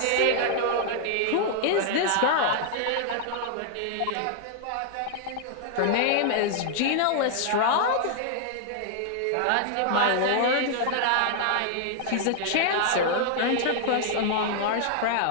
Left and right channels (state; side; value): different; both; correlation 0.00